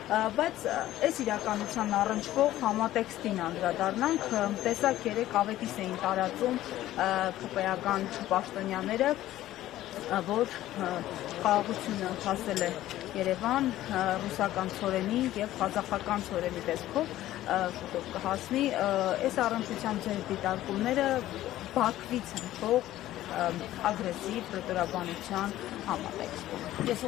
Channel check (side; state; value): right; quieter; 14.3 dB